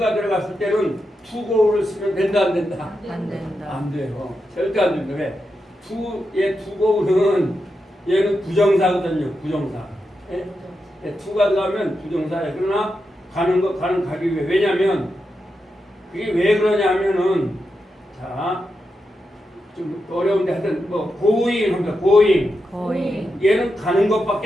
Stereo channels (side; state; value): both; normal; correlation 0.87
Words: 들어갔을 때는 투고를 쓰면 된다 안 된다? 안 돼요. 절대 안 됩니다. 왜? 투고는 얘는 부정사거든요. 부정사. 예? 투가 들어가면 부정사예요. 그러나 가는 것 가는 가기 위해. 왜냐면 그게 왜 그러냐 하면은 자 좀 어려운데 하여튼 뭐 going 합니다. going. 얘는 가는